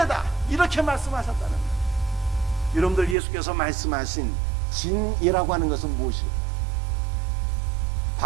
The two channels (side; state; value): left; drops out; at 3.2 s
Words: 이렇게 말씀하셨다는 거예요. 여러분들, 예수께서 말씀하신 진이라고 하는 것은 무엇일까요?